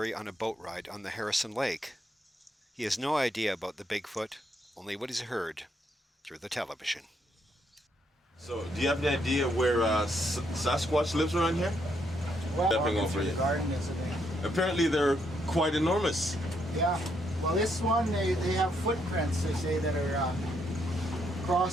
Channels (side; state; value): both; normal; correlation 0.75